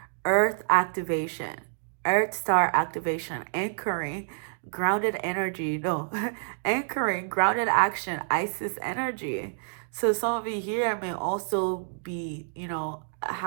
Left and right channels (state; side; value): silent; left; digital silence